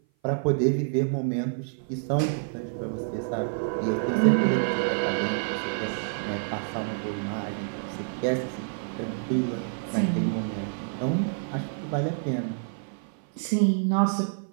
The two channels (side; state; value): left; silent; 56 dB below the other